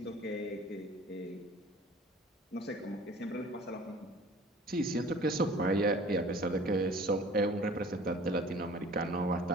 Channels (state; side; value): normal; both; correlation 0.48